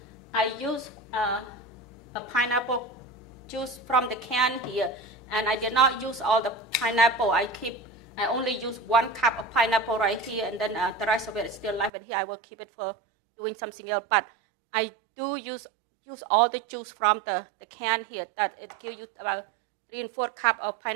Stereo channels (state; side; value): drops out; left; at 11.9 s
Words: I use a pineapple juice from the can here, and I did not use all the pineapple. I only use 1 cup of pineapple right here, and then the rest of it is still left in here. I will keep it for doing something else, but I do use all the juice from the can here. That it gives you about 3 4 cups of